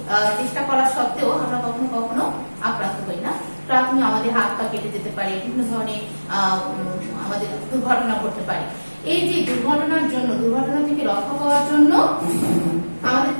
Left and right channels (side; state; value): both; inverted; correlation -1.00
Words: চেষ্টা করার সত্ত্বেও আমরা কখনো কখনো আক্রান্ত হই না। প্রাথমিক আমাদের হাত পা কেটে যেতে পারে, বিভিন্ন ধরনের আমাদের দুর্ঘটনা ঘটতে পারে। এই যে দুর্ঘটনা থেকে রক্ষা পাওয়ার জন্য আমাদের